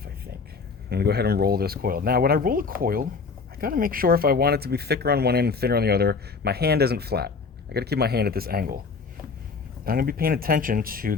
I think. I'm gonna go ahead and roll this coil. Now, when I roll a coil, gotta make sure if I want it to be thicker on one end and thinner on the other, my hand isn't flat. I gotta keep my hand at this angle. I'm gonna be paying attention to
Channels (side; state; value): right; quieter; 4.8 dB